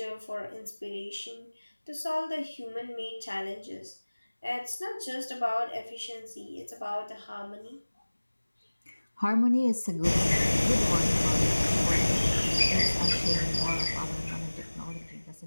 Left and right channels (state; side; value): inverted; both; correlation -1.00